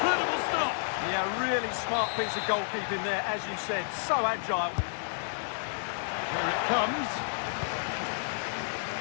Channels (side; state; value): right; silent; 57 dB below the other